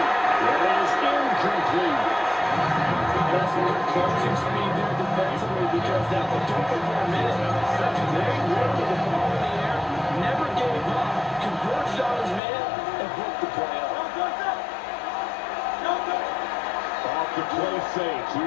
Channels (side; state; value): right; drops out; at 12.4 s